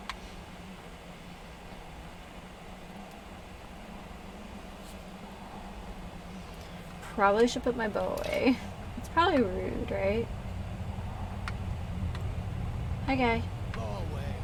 Probably should put my bow away. It's probably rude, right? Hi, guy. Go away.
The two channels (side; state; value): both; identical; correlation 1.00